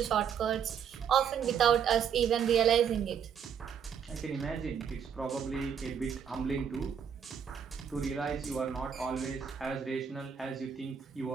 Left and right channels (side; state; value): left; quieter; 7.7 dB